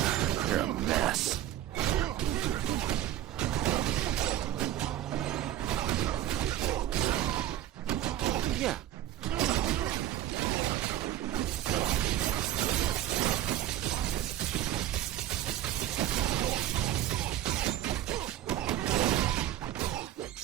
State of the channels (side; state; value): left; quieter; 12.5 dB